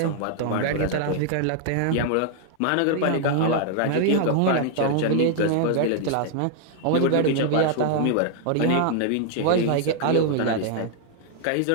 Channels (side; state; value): both; different; correlation 0.00